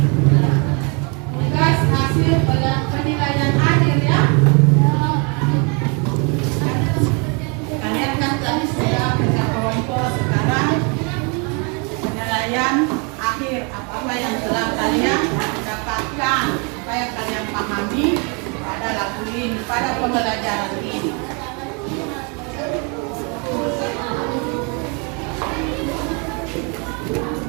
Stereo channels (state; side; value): quieter; left; 33.3 dB